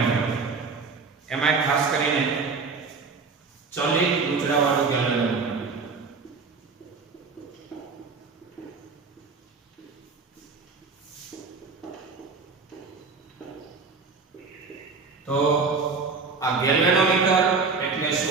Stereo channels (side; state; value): left; quieter; 4.6 dB